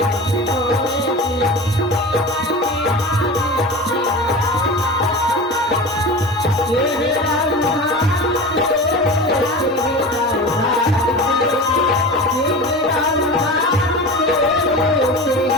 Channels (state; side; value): normal; both; correlation 0.31